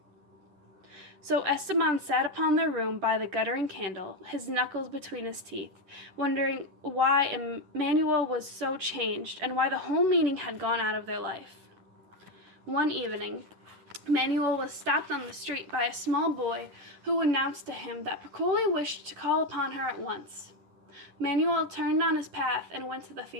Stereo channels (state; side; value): late; left; 11 ms